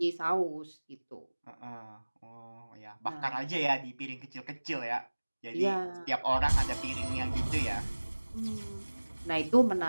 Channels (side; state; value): both; inverted; correlation -1.00